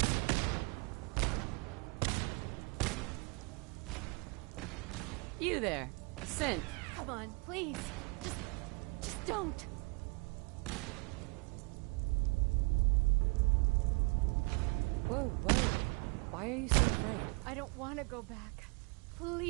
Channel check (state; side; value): quieter; left; 29.5 dB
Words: You there, Sin. Come on, please. Just don't. Whoa, whoa. Why are you so afraid? I don't want to go back.